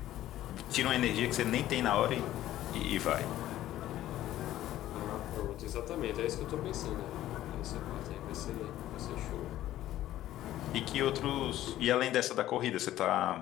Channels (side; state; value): right; quieter; 13.7 dB